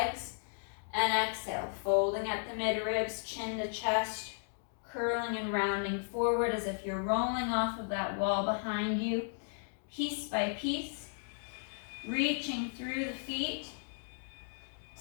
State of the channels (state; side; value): silent; right; digital silence